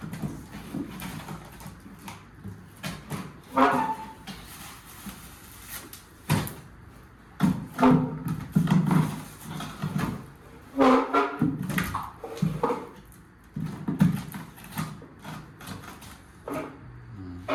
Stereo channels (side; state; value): both; identical; correlation 1.00